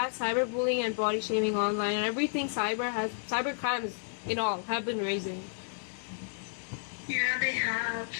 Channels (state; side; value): silent; right; digital silence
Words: cyberbullying and body shaming online and everything cyber crimes in all have been raising. Yeah, they have.